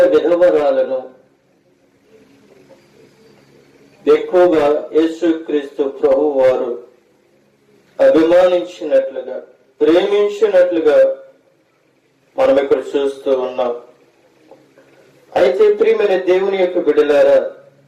విధవరాలను ఎక్కువగా యేసుక్రీస్తు ప్రభు వారు అభిమానించినట్లుగా, ప్రేమించినట్లుగా మనం ఇక్కడ చూస్తూ ఉన్నాం. అయితే ప్రియమైన దేవుని యొక్క బిడ్డలారా,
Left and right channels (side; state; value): both; identical; correlation 1.00